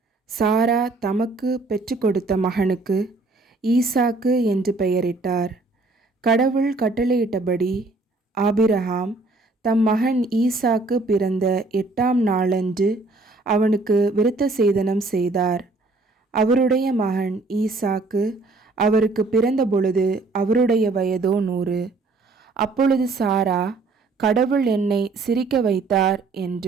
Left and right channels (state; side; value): quieter; left; 3.5 dB